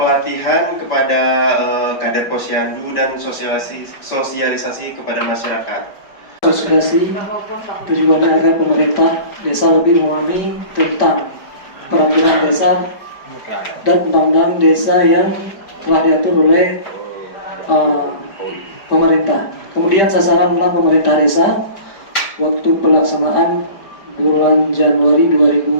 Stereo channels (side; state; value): right; late; 4.8 ms